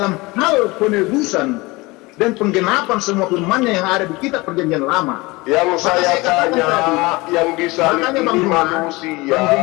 hal penebusan dan penggenapan semua firman-Nya yang ada di kitab Perjanjian Lama. Yang saya katakan tanya, tadi, yang disalib makanya Bang ini Juma, manusia Bang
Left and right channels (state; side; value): quieter; right; 23.0 dB